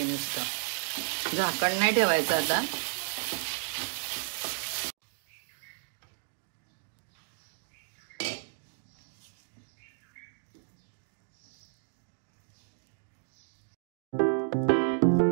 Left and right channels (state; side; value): silent; left; digital silence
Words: नुसतं झाकण नाही ठेवायचं आता।